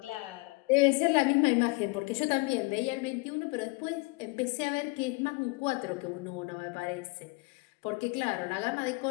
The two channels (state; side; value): quieter; right; 27.1 dB